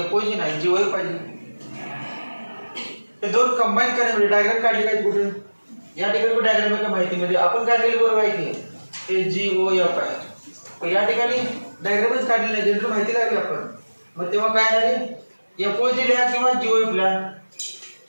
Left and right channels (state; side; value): inverted; both; correlation -1.00